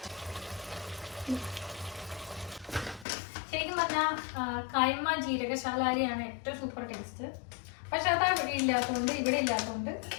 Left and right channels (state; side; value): drops out; right; at 3.1 s